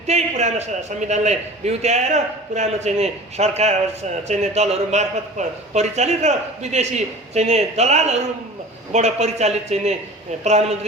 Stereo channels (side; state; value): both; normal; correlation 0.39